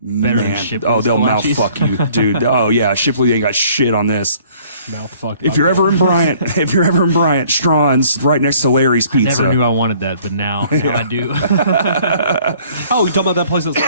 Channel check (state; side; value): inverted; both; correlation -0.57